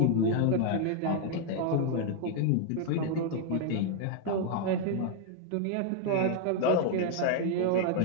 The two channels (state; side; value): different; both; correlation 0.00